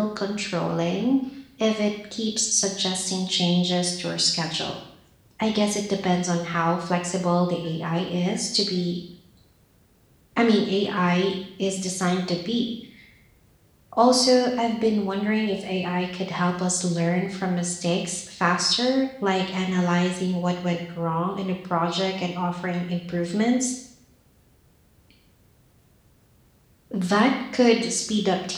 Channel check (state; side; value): identical; both; correlation 1.00